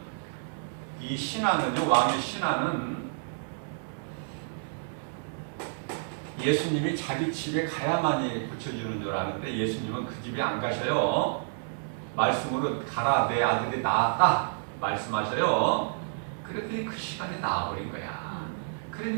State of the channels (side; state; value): left; silent; digital silence